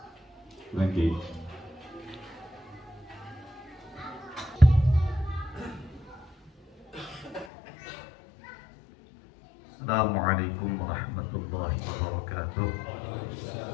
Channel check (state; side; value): drops out; right; at 7.5 s